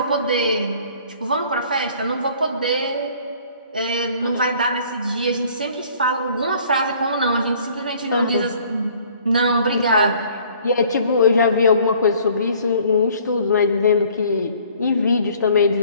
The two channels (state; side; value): inverted; both; correlation -0.56